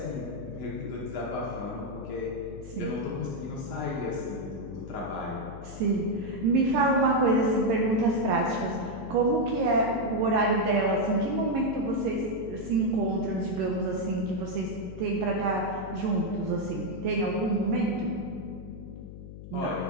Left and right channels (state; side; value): noise; left; hum, 13 dB below the sound